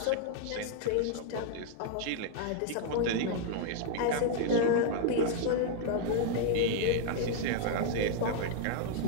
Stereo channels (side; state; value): both; different; correlation -0.01